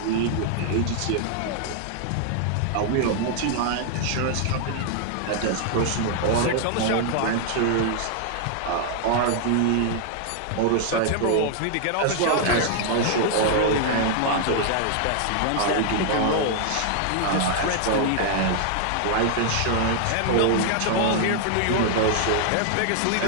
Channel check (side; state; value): both; different; correlation 0.00